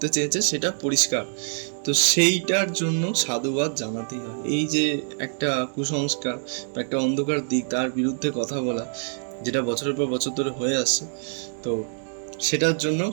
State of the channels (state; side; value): silent; left; 62 dB below the other